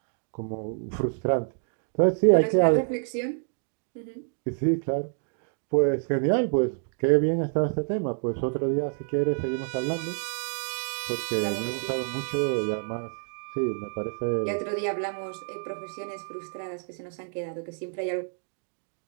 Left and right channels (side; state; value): left; silent; 58 dB below the other